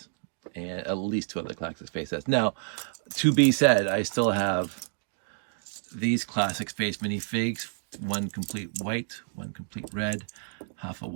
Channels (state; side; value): silent; left; digital silence